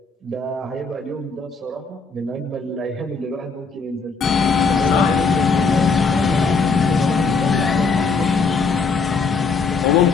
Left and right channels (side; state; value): right; quieter; 4.5 dB